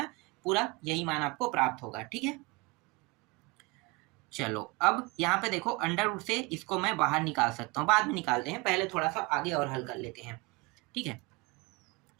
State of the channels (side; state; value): left; quieter; 25.5 dB